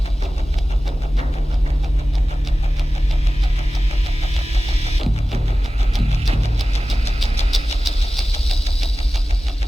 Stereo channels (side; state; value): both; normal; correlation 0.96